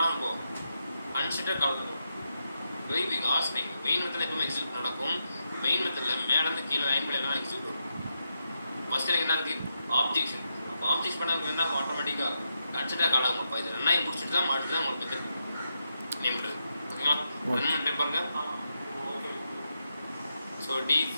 போகும் கன்சிடர் கால் பண்ணும். வெரி பிக் ஆஸ் நீங்கள் மெயின் மெத்தடில் எப்பவுமே எக்ஸிக்யூட் நடக்கும். மெயின் மெத்தடில் மேலேருந்து கீழே லைன் பை லைனாக எக்ஸிக்யூட் வரும். ஃபஸ்ட்டு எனக்கு என்ன இருக்குது ஆப்ஜெக்ஷன். அப்போ ஆப்ஜெக்ட் பண்ண என்ன ஆட்டோமேட்டிக்காக கன்சிடர் கால் ஆகும். அப்போ இது ரெண்டாயும் முடிச்சுட்டு தான் மாட்டு தான் உங்களுக்கு மெத்தட் நேம் பண்ணுறது ஓகேங்களா. ரன் பண்ணிட்டு பாருங்க. ஸோ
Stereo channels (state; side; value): inverted; both; correlation -0.85